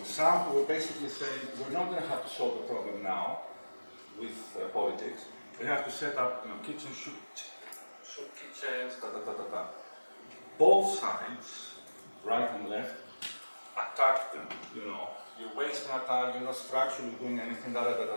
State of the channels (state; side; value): inverted; both; correlation -1.00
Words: Some who were basically saying, we're not going to have to solve the problem now with politics. We have to set up kitchen soup kitchens, da. Both sides, right and left, attack them, You're wasting our time, you're not structurally doing anything,